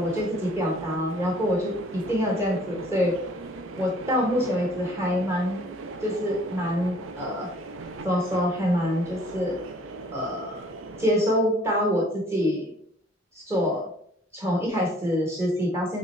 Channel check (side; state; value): both; normal; correlation 0.56